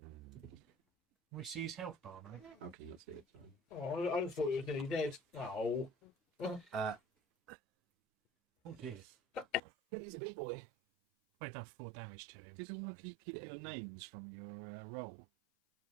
We see his health bar, mate. Okay, let's see it. Oh, I just thought he was nearly dead. Oh. Oh dear. He's a big boy. I've done 4 damage to him. Did all of you keep your names from your roll?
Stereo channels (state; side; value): drops out; left; at 9.6 s